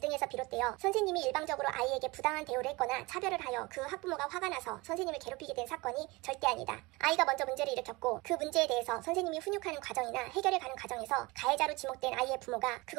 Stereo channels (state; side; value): quieter; left; 23.8 dB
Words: 비롯되어 선생님이 일방적으로 아이에게 부당한 대우를 했거나 차별을 하여 그 학부모가 화가 나서 선생님을 괴롭히게 된 사건이 절대 아니다. 아이가 먼저 문제를 일으켰고 그 문제에 대해서 선생님이 훈육하는 과정이나 해결해 가는 과정에서 가해자로 지목된 아이의 부모가